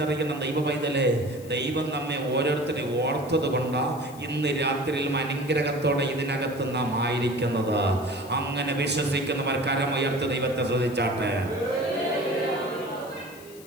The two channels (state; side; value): noise; left; hiss, 21 dB below the sound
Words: ദൈവ പൈതലേ, ദൈവം നമ്മെ ഓരോരുത്തരെ ഓർത്തത് കൊണ്ടാണ് ഇന്ന് രാത്രിയിലും അനുഗ്രഹത്തോടെ ഇതിനകത്ത് നാം ആയിരിക്കുന്നത്. അങ്ങനെ വിശ്വസിക്കുന്നവർ കരമുയർത്ത് ദൈവത്തെ ശ്രദ്ധിച്ചാട്ടെ.